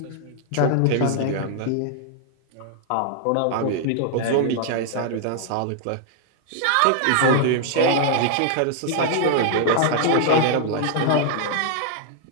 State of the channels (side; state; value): both; different; correlation 0.00